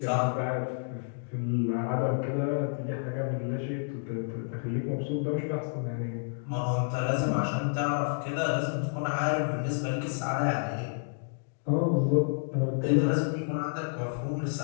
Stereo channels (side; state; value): right; silent; digital silence